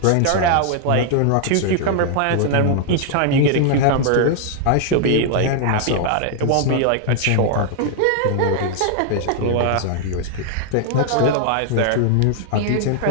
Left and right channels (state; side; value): different; both; correlation 0.00